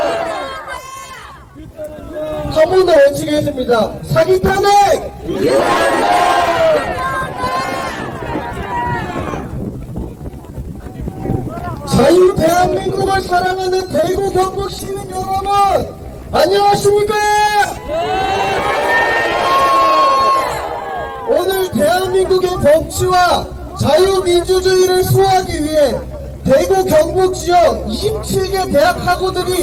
한 번 더 외치겠습니다. 사기 탄핵! 자유 대한민국을 사랑하는 대구 경북 시민 여러분, 안녕하십니까? 오늘 대한민국의 법치와 자유민주주의를 수호하기 위해 대구 경북 지역 27개 대학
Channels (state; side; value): identical; both; correlation 1.00